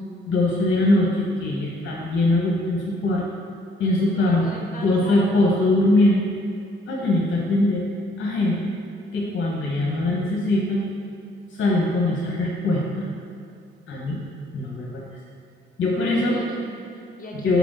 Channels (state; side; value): normal; both; correlation 0.65